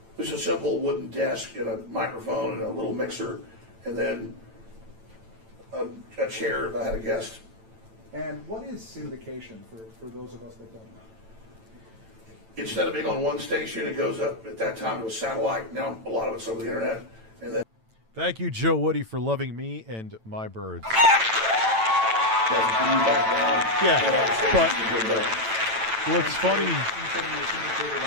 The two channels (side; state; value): left; late; 9.0 ms